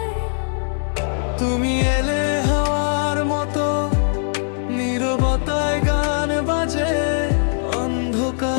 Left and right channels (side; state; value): right; silent; 58 dB below the other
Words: তুমি এলে হাওয়ার মতো, নীরবতায় গান বাজে,